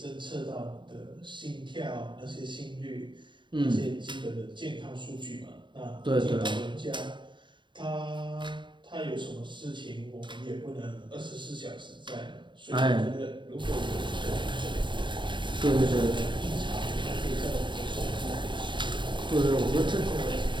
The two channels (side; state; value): left; late; 0.23 ms